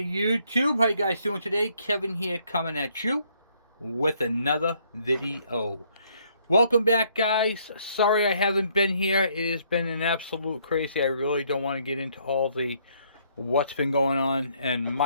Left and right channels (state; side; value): inverted; both; correlation -0.67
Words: YouTube, how you guys doing today? Kevin here coming at you with another video. Welcome back, guys. Sorry I haven't been here. It has been an absolute crazy. I really don't want to get into all the what's been going on in